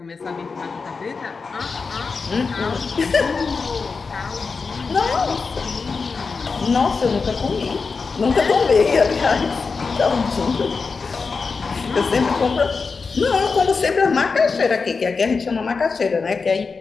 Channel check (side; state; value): right; quieter; 4.7 dB